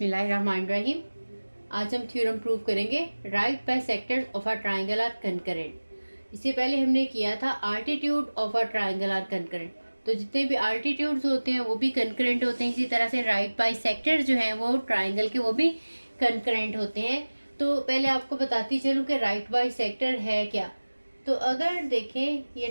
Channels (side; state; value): both; inverted; correlation -1.00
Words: आज हम थ्योरम प्रूव करेंगे right bisectors of a triangle are concurrent. इससे पहले हमने किया था altitude of a triangle are concurrent. तो जितने भी आल्टीट्यूड्स होते हैं वो भी कंकरेंट होते हैं। इसी तरह से राइट बाय सेक्टर जो हैं वो ट्राइंगल के वो भी कंकरेंट होते हैं। तो पहले आपको बताती चलूँ कि राइट बाय सेक्टर है क्या। तो अगर देखें